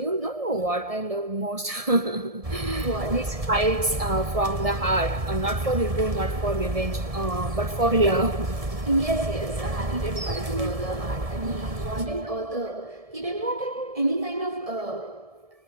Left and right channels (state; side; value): late; left; 1.7 ms